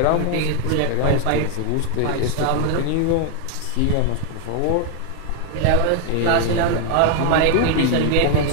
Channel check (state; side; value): different; both; correlation 0.00